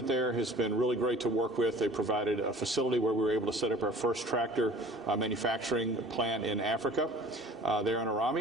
there has been really great to work with. They provided a facility where we were able to set up our first tractor manufacturing plant in Africa, there in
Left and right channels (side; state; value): both; normal; correlation 0.46